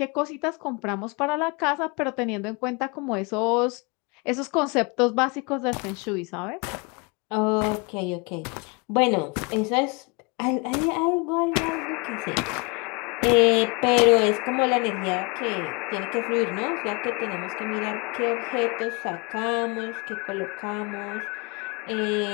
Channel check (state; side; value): quieter; right; 30.5 dB